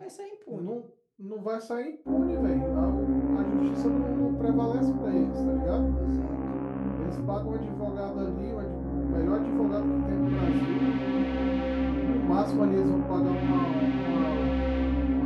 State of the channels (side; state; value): both; identical; correlation 1.00